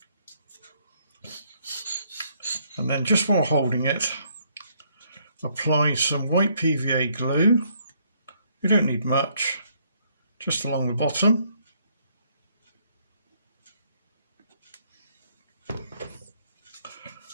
And then just while holding it, apply some white PVA glue. You don't need much, just along the bottom.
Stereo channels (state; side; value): inverted; both; correlation -0.69